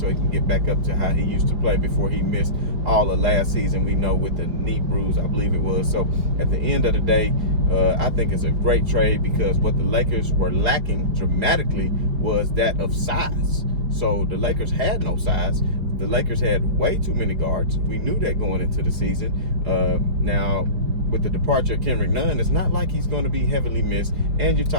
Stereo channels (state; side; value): late; left; 4.9 ms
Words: he can get back up to how he used to play before he missed all of last season, we know, with the knee bruise, I believe it was. So at the end of the day, I think it's a great trade because what the Lakers were lacking dramatically was that of size. So the Lakers had no size. The Lakers had way too many guards. We knew that going into the season. Now, with the departure of Kendrick Nunn, it's not like he's going to be heavily missed. And you're